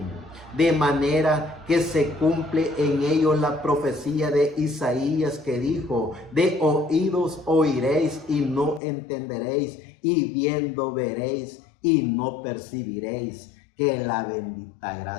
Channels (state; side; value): drops out; right; at 8.8 s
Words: De manera que se cumple en ellos la profecía de Isaías, que dijo: de oídos oiréis y no entenderéis, y viendo veréis y no percibiréis. Que la bendita